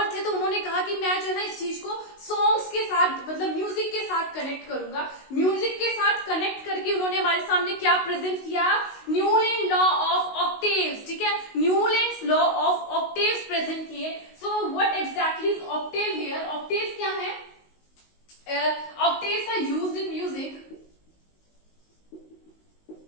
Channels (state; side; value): late; right; 19 ms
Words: थे। तो उन्होंने कहा कि मैं जो है ना इस चीज को सॉन्ग्स के साथ, मतलब म्यूजिक के साथ कनेक्ट करूंगा। म्यूजिक के साथ कनेक्ट करके उन्होंने हमारे सामने क्या प्रेजेंट किया, न्यूलैंड लॉ ऑफ ऑक्टेव्स। ठीक है, Newlands law of octaves present किए। So what exactly is octave here, octaves क्या है, octaves are used in music